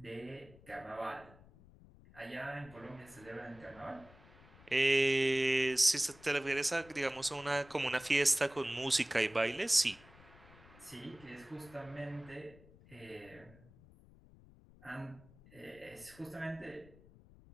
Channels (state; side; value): noise; left; rumble, 23 dB below the sound